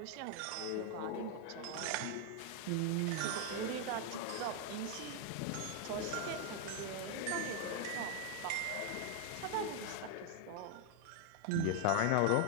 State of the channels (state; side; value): different; both; correlation 0.00